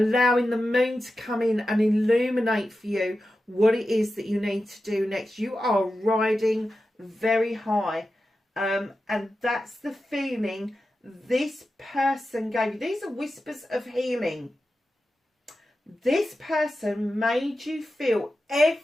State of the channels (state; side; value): normal; both; correlation 0.92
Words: the moon to come in and illuminate for you what it is that you need to do next. You are riding very high. And that's the feeling this person gave you. These are whispers of healing. This person made you feel